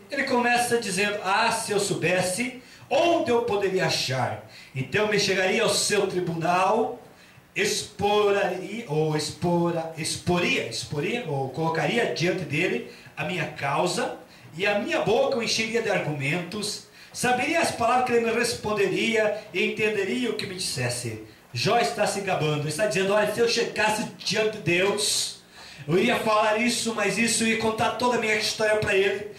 Ele começa dizendo: ah, se eu soubesse onde eu poderia achar, então me chegaria ao seu tribunal, exporia, ou colocaria diante dele a minha causa, e a minha boca o encheria de argumentos, saberia as palavras que ele me responderia, e entenderia o que me dissesse. Jó está se gabando, está dizendo: olha, se eu chegasse diante de Deus, eu iria falar isso, mas isso, eu ia contar toda a minha história para ele.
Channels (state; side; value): identical; both; correlation 1.00